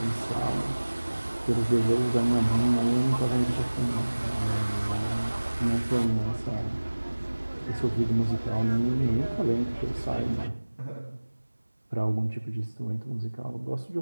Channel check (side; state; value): both; inverted; correlation -1.00